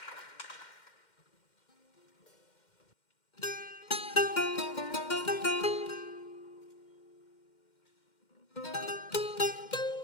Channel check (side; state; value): right; late; 2.1 ms